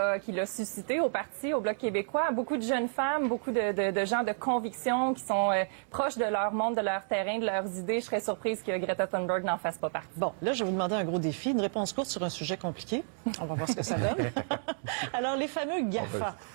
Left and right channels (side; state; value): left; silent; digital silence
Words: suscitées au parti, au Bloc québécois. Beaucoup de jeunes femmes, beaucoup de gens de conviction qui sont proches de leur monde, de leur terrain, de leurs idées. Je serais surprise que Greta Thunberg n'en fasse pas partie. Bon, là, je vais vous demander un gros défi, une réponse courte sur un sujet compliqué. On va voir ce que ça donne. Alors, les fameux GAFA,